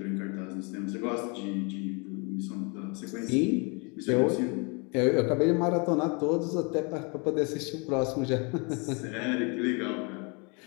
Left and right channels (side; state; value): right; quieter; 32.3 dB